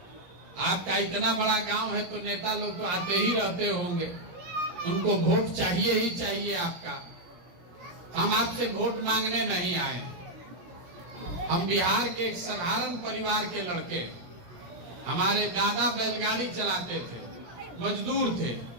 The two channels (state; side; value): late; left; 17 ms